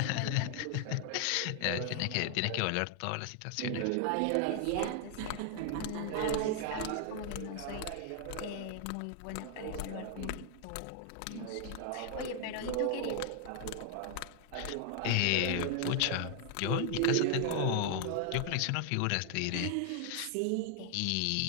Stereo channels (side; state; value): both; different; correlation 0.00